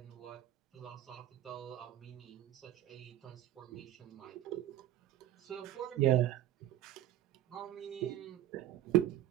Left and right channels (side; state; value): left; quieter; 13.3 dB